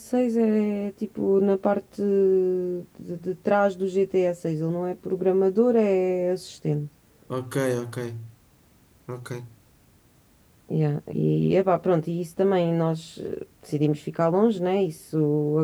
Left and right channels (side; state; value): both; identical; correlation 1.00